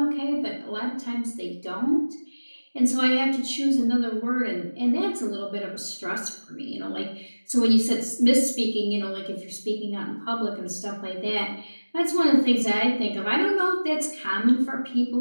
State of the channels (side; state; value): both; inverted; correlation -1.00